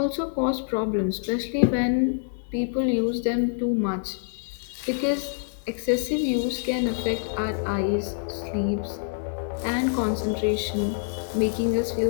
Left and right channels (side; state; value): right; silent; 61 dB below the other